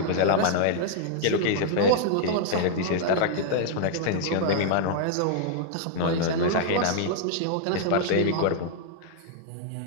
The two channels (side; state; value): both; different; correlation -0.01